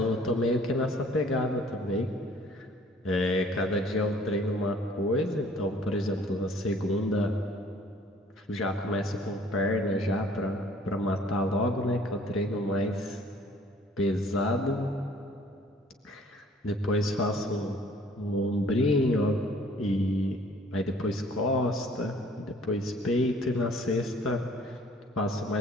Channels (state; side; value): normal; both; correlation 0.55